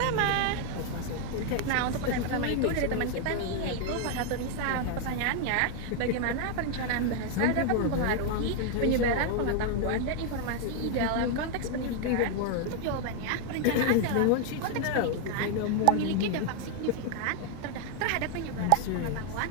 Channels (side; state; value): both; different; correlation 0.00